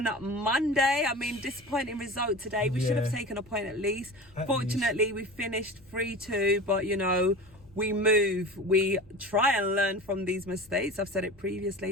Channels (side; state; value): left; noise; rumble, 27 dB below the sound